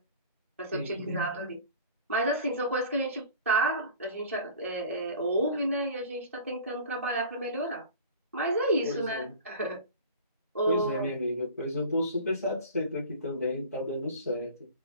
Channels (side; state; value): both; inverted; correlation -0.40